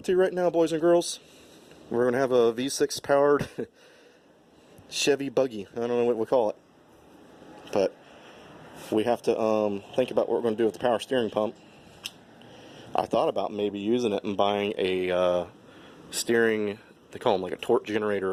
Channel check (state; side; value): identical; both; correlation 1.00